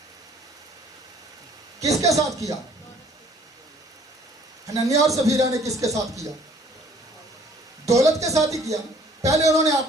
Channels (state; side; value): normal; both; correlation 0.57